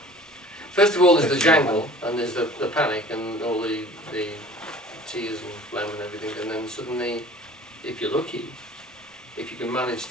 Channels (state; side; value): normal; both; correlation 0.46